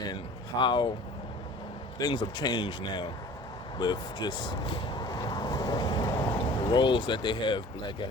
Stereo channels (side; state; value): both; normal; correlation 0.45